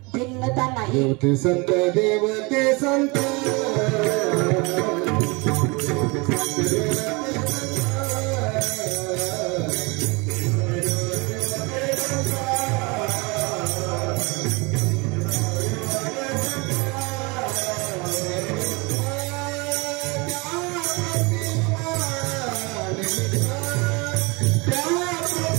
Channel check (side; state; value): left; quieter; 27.5 dB